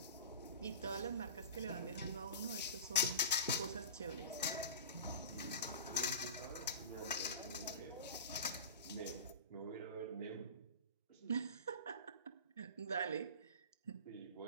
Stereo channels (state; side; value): inverted; both; correlation -0.32